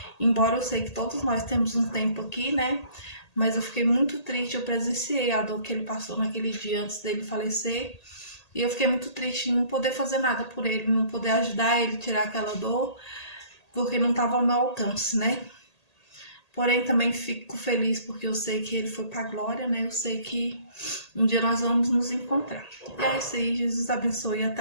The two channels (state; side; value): late; right; 1.8 ms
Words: embora eu sei que todos nós temos um tempo aqui, né? Mas eu fiquei muito triste, eu presenciei a dor que ele passou naquele dia antes dele falecer. E eu fiquei muito triste em não poder fazer nada por ele, não poder ajudar ele a tirar aquela dor, porque não estava ao meu alcance, né? Porém, também fico feliz porque eu sei que ele foi para a glória, né? Eu sei que um dia nós vamos nos encontrar. E é isso aí, Jesus abençoe e